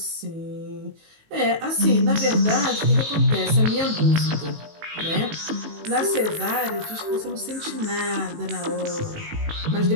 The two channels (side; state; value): left; late; 19 ms